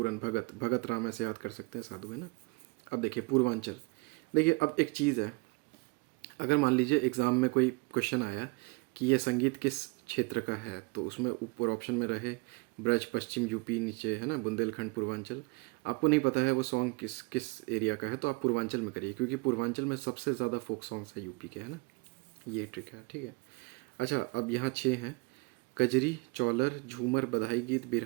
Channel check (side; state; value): left; quieter; 27.9 dB